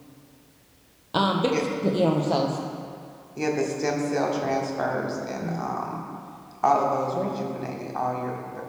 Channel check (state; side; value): identical; both; correlation 1.00